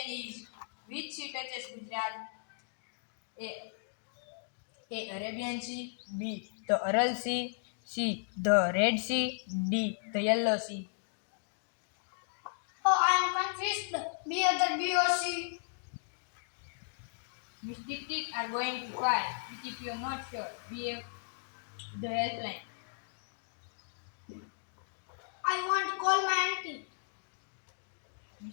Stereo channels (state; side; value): silent; right; digital silence